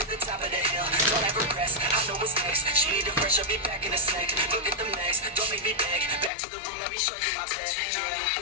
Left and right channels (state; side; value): drops out; right; at 6.3 s